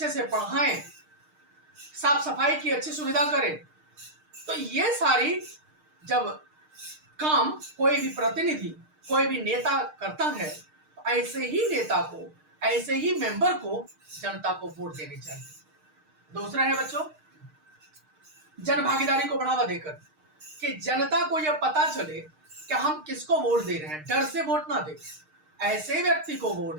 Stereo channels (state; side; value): late; left; 6.5 ms